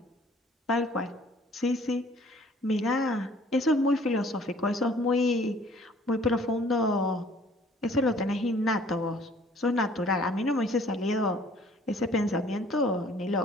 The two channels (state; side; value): normal; both; correlation 0.55